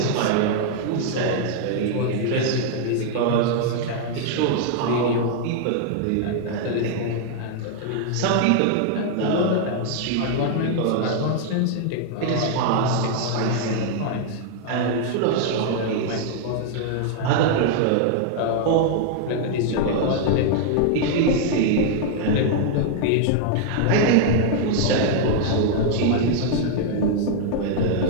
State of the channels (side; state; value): both; different; correlation 0.00